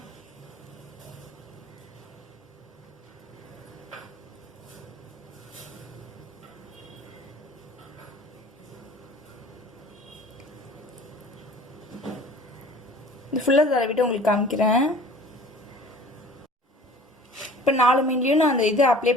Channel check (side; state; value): both; normal; correlation 0.46